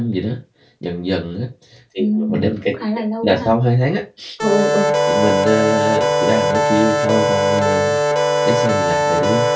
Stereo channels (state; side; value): identical; both; correlation 1.00